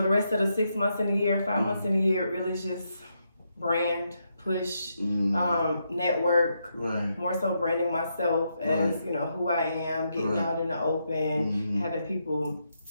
rest of the 6 months in the year, 5 months in the year, really just brand, push, network, right. More so branding myself as, you know, who I am, getting out in the open, having people,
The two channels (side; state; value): both; inverted; correlation -0.81